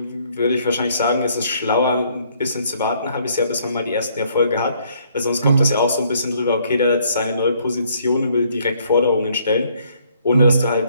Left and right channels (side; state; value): both; inverted; correlation -0.65